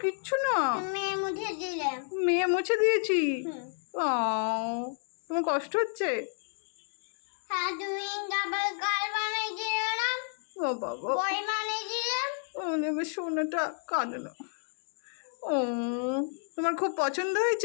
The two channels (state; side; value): silent; right; digital silence